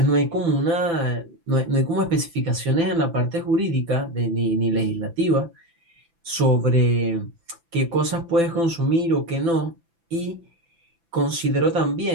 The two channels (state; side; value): late; left; 6.0 ms